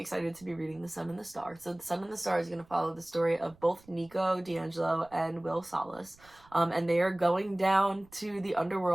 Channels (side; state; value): right; noise; rumble, 28 dB below the sound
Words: to be reading The Sun and the Star. So The Sun and the Star is going to follow the story of both Nico Di Angelo and Will Solace. And they are going down to the